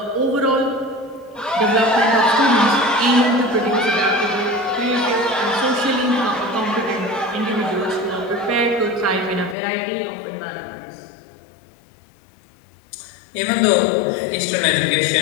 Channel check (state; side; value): drops out; right; at 9.6 s